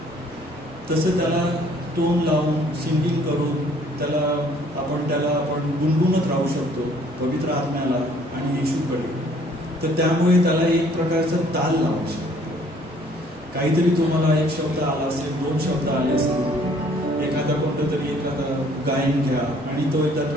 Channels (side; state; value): both; normal; correlation 0.59